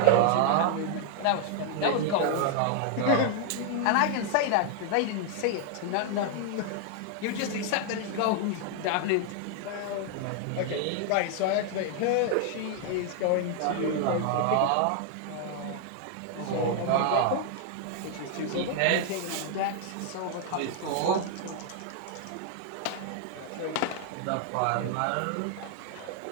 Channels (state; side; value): different; both; correlation 0.00